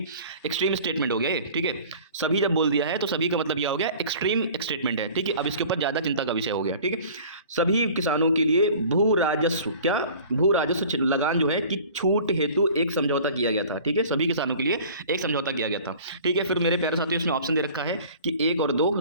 स्टेटमेंट हो गया ये। ठीक है, सभी जब बोल दिया है तो सभी का मतलब यह हो गया एक्सट्रीम स्टेटमेंट है। ठीक है, अब इसके ऊपर ज्यादा चिंता का विषय हो गया। ठीक है, सभी किसानों के लिए भू राजस्व, क्या? भू राजस्व लगान जो है कि छूट हेतु एक समझौता किया गया था। ठीक है, सभी किसानों के लिए एक समझौता किया गया था। ठीक है, फिर मेरे प्यारे साथियों इसमें ऑप्शन दे रखा है कि 1 और 2,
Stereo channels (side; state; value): both; inverted; correlation -0.45